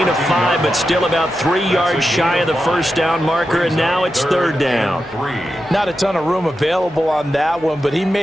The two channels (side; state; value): right; noise; hum, 24 dB below the sound